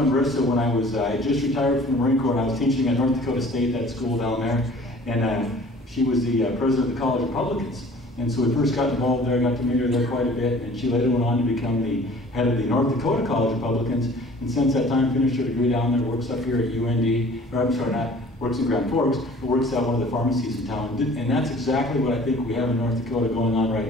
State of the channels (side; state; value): both; normal; correlation 0.49